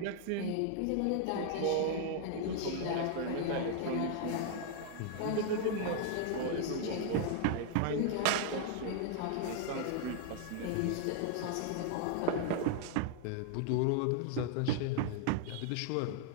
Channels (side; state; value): both; different; correlation 0.00